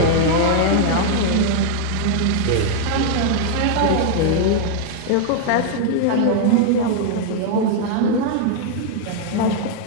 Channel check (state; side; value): different; both; correlation -0.01